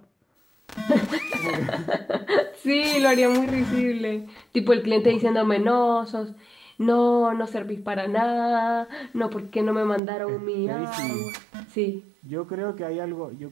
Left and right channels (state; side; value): drops out; left; at 10.0 s